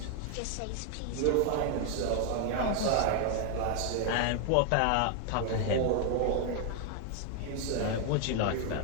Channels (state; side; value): different; both; correlation 0.00